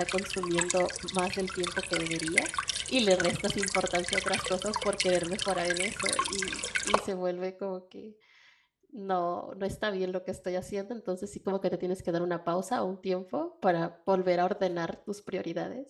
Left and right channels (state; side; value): identical; both; correlation 1.00